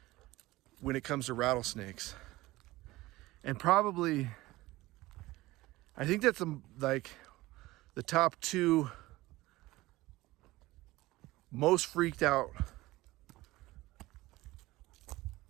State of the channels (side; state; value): left; quieter; 18.7 dB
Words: when it comes to rattlesnakes. And probably, I think that's like the top two most freaked out